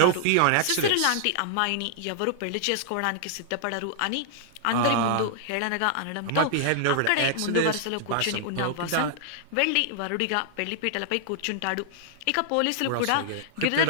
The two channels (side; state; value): both; different; correlation -0.01